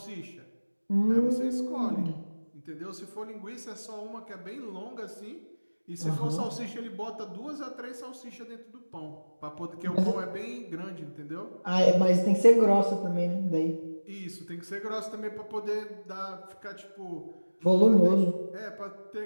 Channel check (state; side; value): inverted; both; correlation -1.00